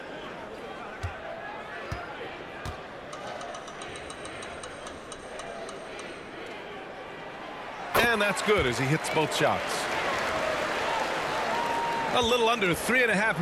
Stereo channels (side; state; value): both; identical; correlation 1.00